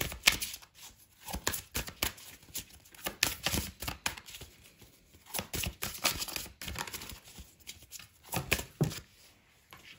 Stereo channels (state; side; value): identical; both; correlation 1.00